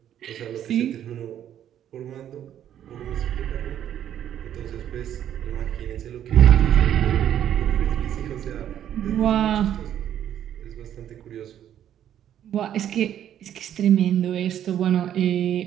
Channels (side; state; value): left; quieter; 10.5 dB